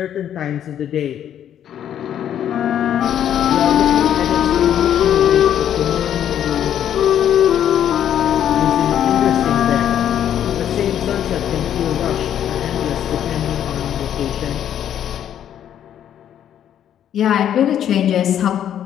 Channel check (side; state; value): right; quieter; 10.1 dB